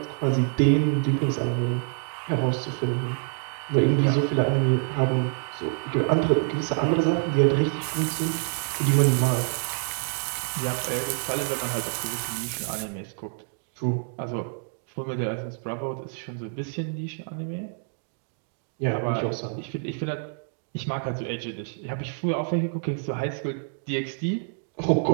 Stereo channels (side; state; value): left; silent; 60 dB below the other